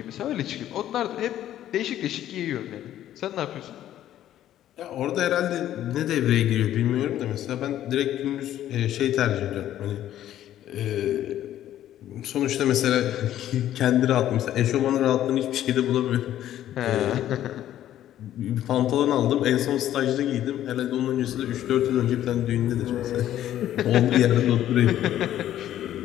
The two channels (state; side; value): quieter; right; 12.2 dB